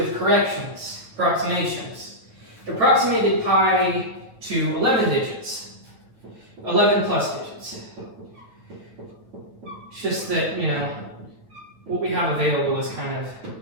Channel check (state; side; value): late; left; 9.4 ms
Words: corrections, approximations. Approximated pi to 11 digits, 11 plus digits. It's just that, you know, what we have available is kind of